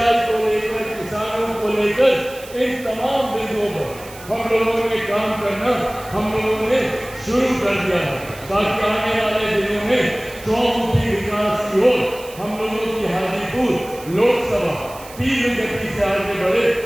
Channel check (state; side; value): noise; right; hiss, 18 dB below the sound